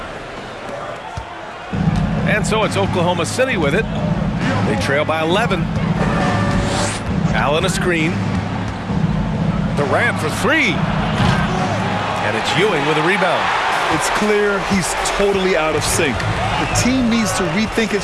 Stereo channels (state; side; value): identical; both; correlation 1.00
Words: And so it's Oklahoma City with it. They trail by 11. Allen a screen. Durant for three. And it's Ewing with a rebound. It's clear he's totally out of sync. The team needs to rethink its